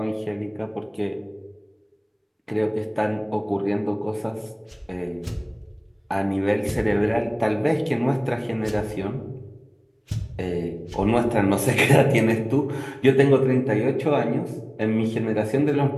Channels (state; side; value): identical; both; correlation 1.00